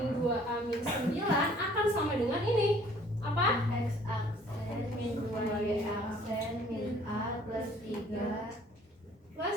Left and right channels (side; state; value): both; normal; correlation 0.56